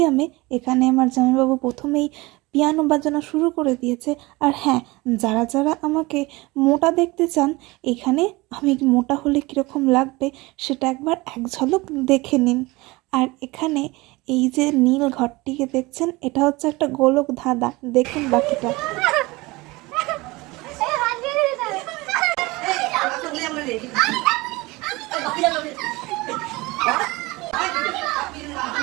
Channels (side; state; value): left; quieter; 22.4 dB